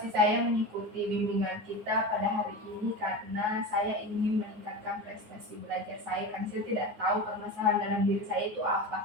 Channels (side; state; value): left; late; 9.5 ms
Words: saya mengikuti bimbingan kita pada hari ini karena saya ingin meningkatkan prestasi belajar saya karena saya tidak tahu permasalahan dalam diri saya itu apa.